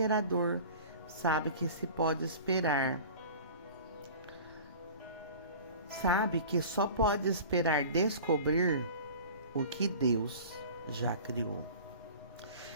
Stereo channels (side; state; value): both; inverted; correlation -0.40